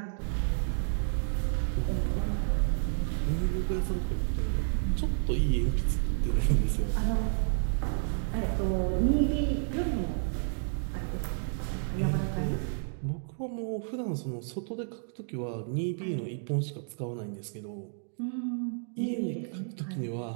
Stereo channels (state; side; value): silent; left; digital silence